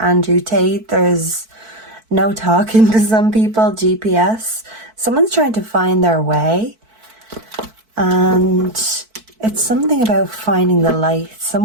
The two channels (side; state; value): left; late; 4.5 ms